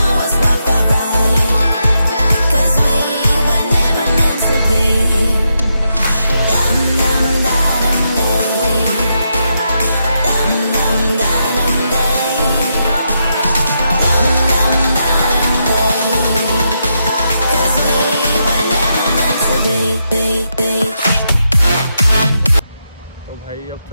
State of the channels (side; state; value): both; inverted; correlation -0.82